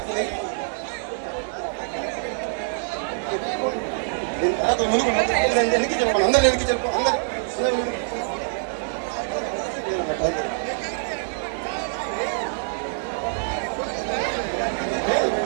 ముందుకు వెనక్కి చెప్పండి అందరు వెనక్కి చెప్పు అందరు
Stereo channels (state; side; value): silent; left; 60 dB below the other